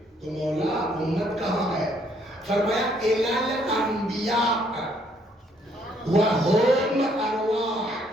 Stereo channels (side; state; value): both; normal; correlation 0.67